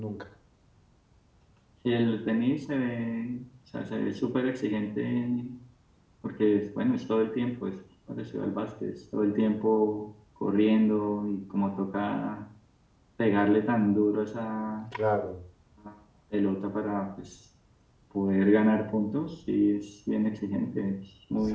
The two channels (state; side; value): identical; both; correlation 1.00